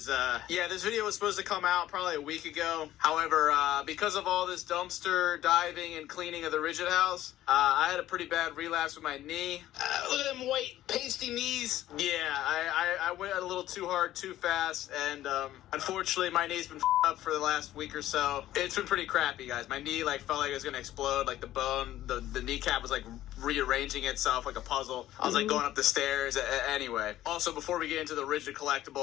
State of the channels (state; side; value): quieter; right; 13.8 dB